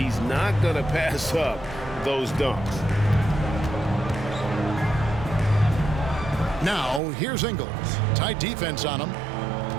not going to pass up those dunks. Now, here's Ingles. Tight defense on him.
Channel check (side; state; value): left; drops out; at 7.0 s